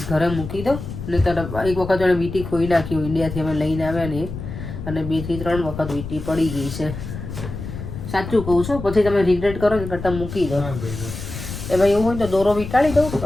ઘરે મૂકી દો. ને તો એક વખત એને વીટી ખોઈ નાખ્યું ઇન્ડિયાથી અમે લઈને આવ્યા ને અને 2 થી 3 વખત વીટી પડી ગઈ છે. સાચું કહું છું પછી તમે રિગ્રેટ કરો ને કરતાં મૂકી દો. એમાં એવું હોય તો દોરો વીંટાળી દઉં.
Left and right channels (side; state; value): left; noise; rumble, 9 dB below the sound